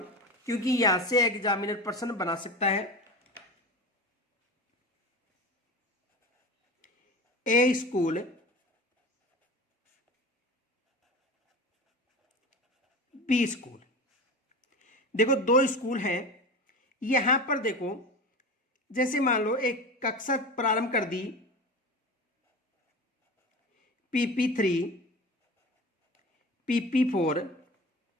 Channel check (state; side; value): normal; both; correlation 0.30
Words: क्योंकि यहां से एग्जामिनर प्रश्न बना सकता है। ए स्कूल, बी स्कूल। देखो दो स्कूल हैं। यहां पर देखो जैसे मान लो एक कक्षा प्रारंभ कर दी, PP3, PP4,